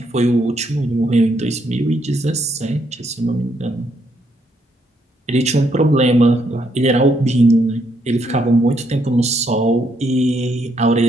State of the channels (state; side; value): normal; both; correlation 0.74